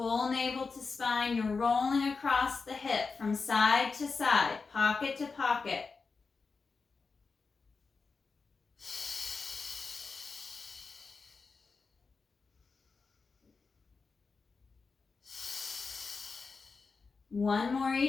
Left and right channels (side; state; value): right; quieter; 4.6 dB